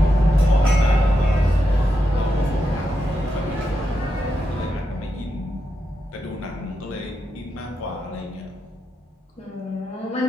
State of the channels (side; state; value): both; normal; correlation 0.85